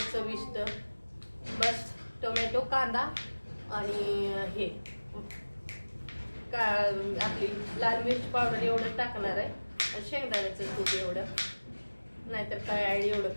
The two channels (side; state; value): both; inverted; correlation -1.00